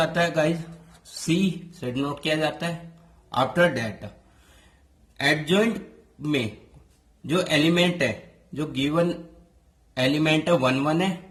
है गाइज सी से डिनोट किया जाता है। आफ्टर दैट एडजॉइंट में जो एलिमेंट है, जो गिवन एलिमेंट है 1 1 है,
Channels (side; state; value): both; identical; correlation 1.00